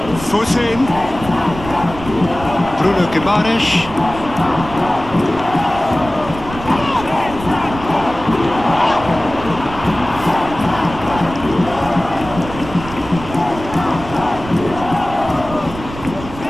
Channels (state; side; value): noise; right; rumble, 12 dB below the sound